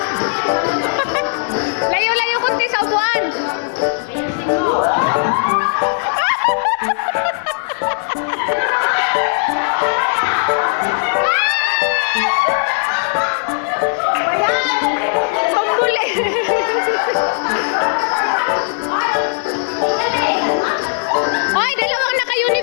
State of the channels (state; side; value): silent; right; digital silence